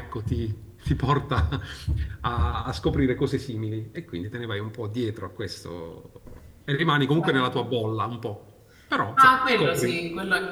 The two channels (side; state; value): both; identical; correlation 1.00